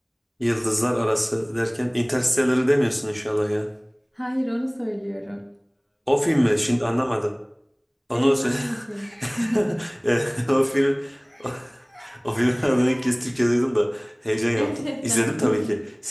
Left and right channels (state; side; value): identical; both; correlation 1.00